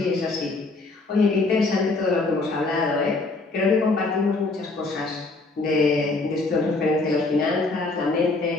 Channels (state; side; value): quieter; right; 3.5 dB